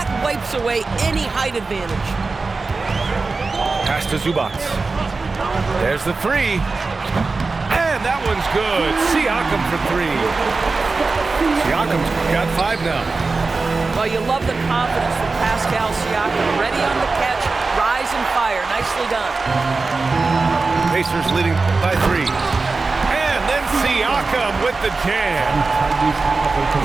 wipes away any height advantage. Pass to Zubac. There's the three. And that one's good. Siakam for 3. Siakam's got 5 now. Well, you love the confidence from Pascal Siakam. Ready on the catch, rise and fire. Nicely done. Pacers leading by 3. And then Siakam with the jam.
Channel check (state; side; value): quieter; left; 3.9 dB